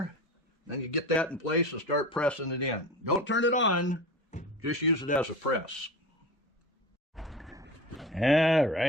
Then you get that in place and start pressing it in. Don't turn it on, just use it as a press. All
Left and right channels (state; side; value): normal; both; correlation 0.31